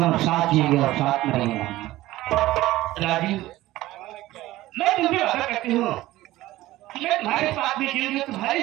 साथ जिएंगे और साथ में रहेंगे। राजू, मैं तुम्हें वादा करती हूँ कि मैं तुम्हारे साथ में जीऊंगी, तुम्हारे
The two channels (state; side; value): quieter; left; 16.7 dB